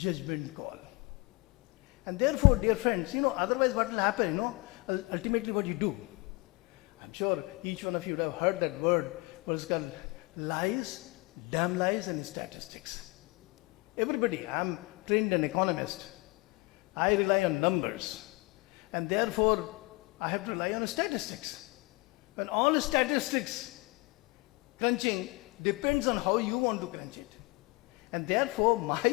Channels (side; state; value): right; quieter; 24.8 dB